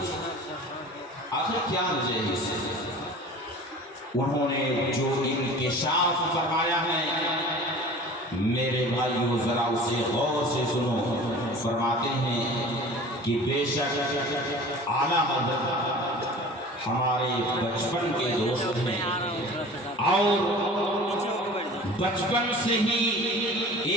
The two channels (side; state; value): both; normal; correlation 0.41